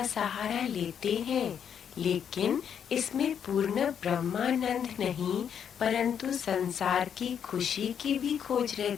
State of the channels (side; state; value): right; quieter; 8.2 dB